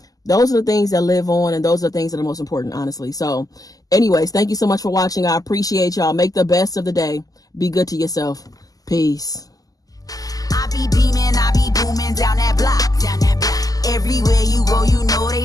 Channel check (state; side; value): late; right; 0.17 ms